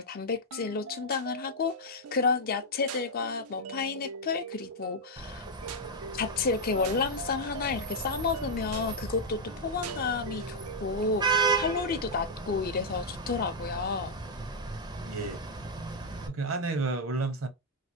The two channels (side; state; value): both; normal; correlation -0.02